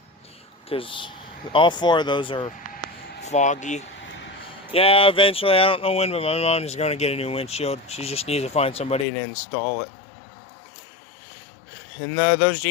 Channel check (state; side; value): drops out; right; at 9.1 s